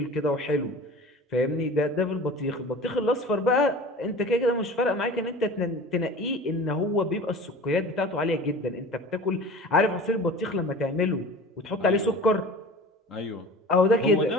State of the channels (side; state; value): both; normal; correlation 0.39